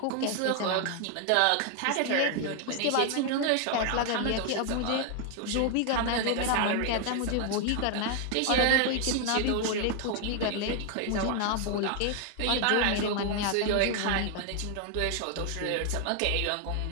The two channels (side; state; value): both; different; correlation 0.00